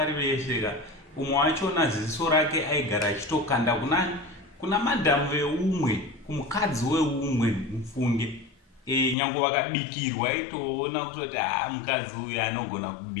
vese umwe wachona ziso rake aigara achitokanda kunani kuna madhamu veumwe kumukadzi weumwe mufunge nyange vakabikirwa aitoona kutoti mukadzi uyu anogona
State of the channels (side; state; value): right; drops out; at 9.2 s